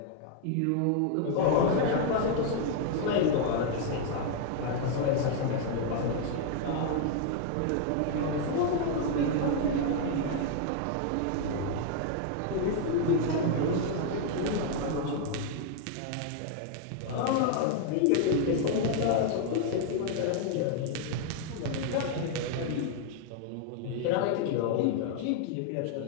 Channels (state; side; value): different; both; correlation 0.00